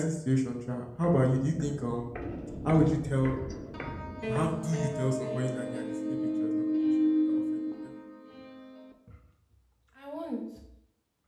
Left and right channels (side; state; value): both; identical; correlation 1.00